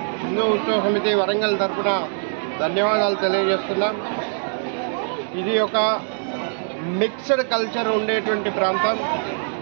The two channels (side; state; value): left; silent; digital silence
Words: హిందూ ఉత్సవ సమితి వరంగల్ తరఫున ధన్యవాదాలు తెలియజేస్తున్నాం। ఇది ఒక మిక్స్డ్ కల్చర్ ఉండేటువంటి ప్రాంతం।